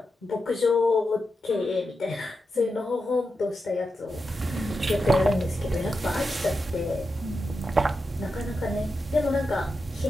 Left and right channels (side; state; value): both; normal; correlation 0.88